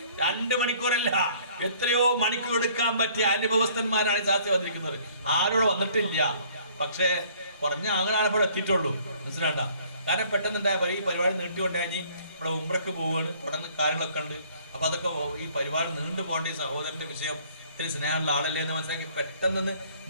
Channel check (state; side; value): inverted; both; correlation -0.57